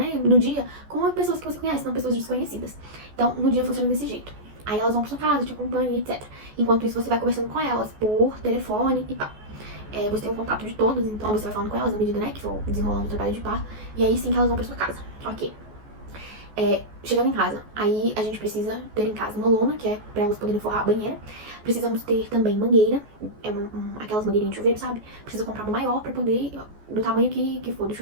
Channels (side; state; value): left; late; 14 ms